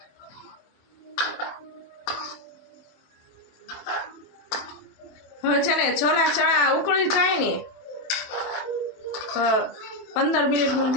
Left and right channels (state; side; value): late; right; 27 ms